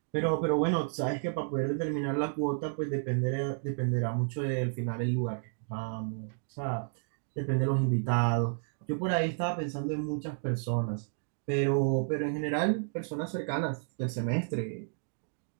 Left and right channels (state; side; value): silent; left; digital silence